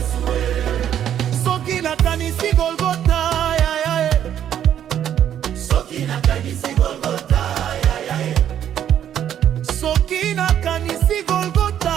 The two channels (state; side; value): quieter; left; 10.1 dB